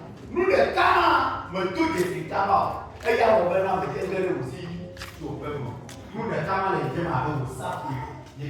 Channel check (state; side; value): identical; both; correlation 1.00